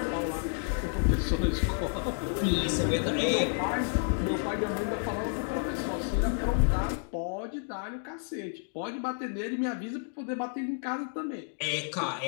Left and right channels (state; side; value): silent; right; 57 dB below the other